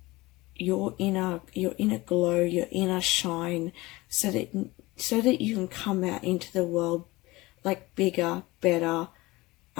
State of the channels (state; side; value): quieter; right; 20.9 dB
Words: your inner glow, your inner shine, so that you can come out into the world like bigger, better,